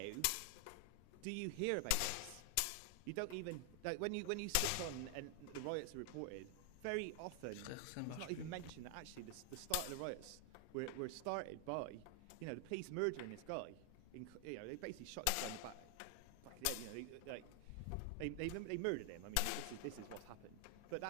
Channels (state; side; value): different; both; correlation 0.00